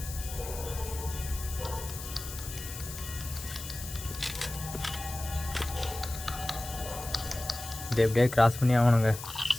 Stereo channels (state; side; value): noise; left; hiss, 10 dB below the sound